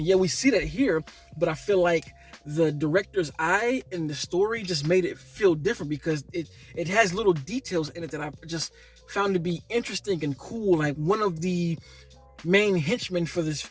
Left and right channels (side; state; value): both; identical; correlation 1.00